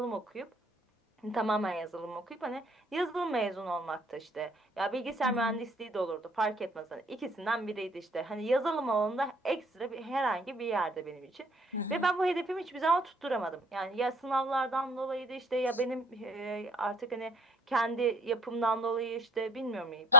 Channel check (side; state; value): both; normal; correlation 0.55